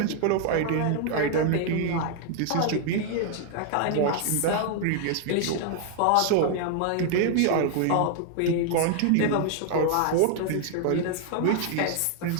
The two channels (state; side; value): different; both; correlation 0.00